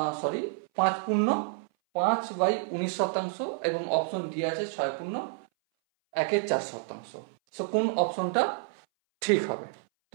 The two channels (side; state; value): left; silent; 59 dB below the other